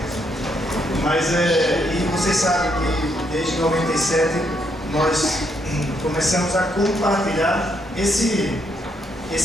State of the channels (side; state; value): both; normal; correlation 0.75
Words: Mas, e vocês sabem que desde 97 nós começamos a compartilhar esse